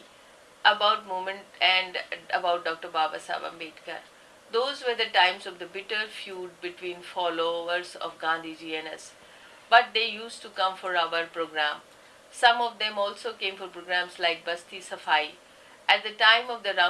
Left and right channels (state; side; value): identical; both; correlation 1.00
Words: about movement and about Dr. Babasaheb Ambedkar. Those were the times of the bitter feud between followers of Gandhiji and us. But they used to come for our program. Some of them also came for programs like Basti Safai. At the time of the